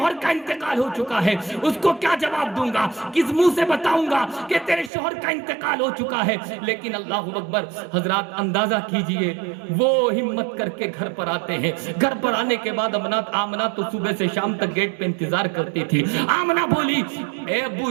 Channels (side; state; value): left; drops out; at 4.9 s